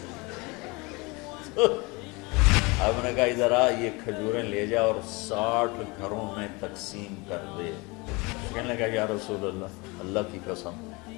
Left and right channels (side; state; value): right; quieter; 26.1 dB